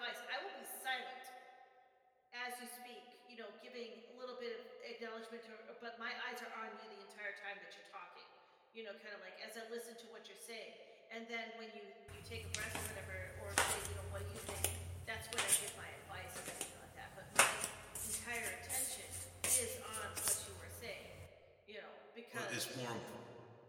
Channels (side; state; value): both; identical; correlation 1.00